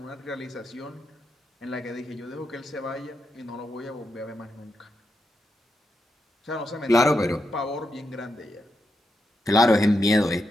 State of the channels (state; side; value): normal; both; correlation 0.85